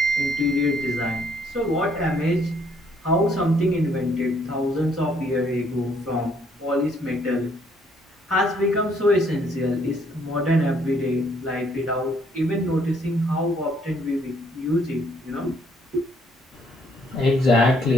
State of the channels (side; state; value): both; normal; correlation 0.66